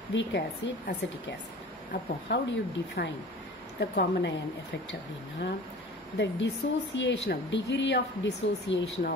weak acid, acetic acid. அப்போ how do you define the common ion effect அப்படின்னா the dissociation of degree of dissociation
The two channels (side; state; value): both; normal; correlation 0.40